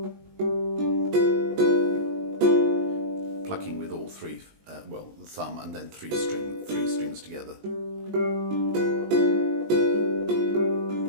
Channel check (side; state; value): left; late; 19 ms